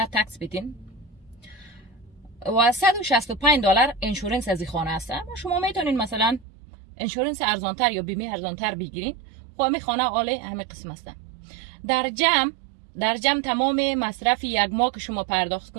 تکس بدین و 165 دلار انشورنس از این خانه است. شما میتونین مثلا انشورنس ارزانتر یا بیمه ارزانتر بگیرین. خب همین خانه عالی همه قسم است. در جمع تمام مصرف یک ماه که شما پرداخت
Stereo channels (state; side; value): drops out; left; at 6.5 s